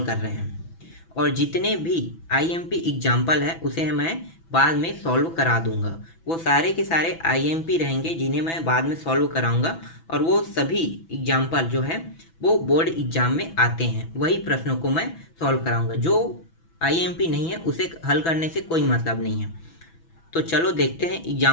कर रहे हैं। और जितने भी आईएमपी एग्जाम्पल है उसे मैं बाद में सॉल्व करा दूंगा। वो सारे के सारे आईएमपी रहेंगे जिन्हें मैं बाद में सॉल्व कराऊंगा। और वो सभी एग्जाम्पल जो है वो बोर्ड एग्जाम में आते हैं, वही प्रश्नों को मैं सॉल्व कराऊंगा। जो आईएमपी नहीं है उसे हल करने से कोई मतलब नहीं है। तो चलो देखते हैं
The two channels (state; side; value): late; right; 6.0 ms